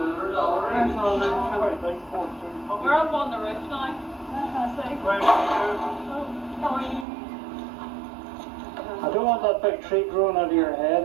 We're up on the roof now. I don't want that big tree growing out of your head,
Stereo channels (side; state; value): left; drops out; at 7.1 s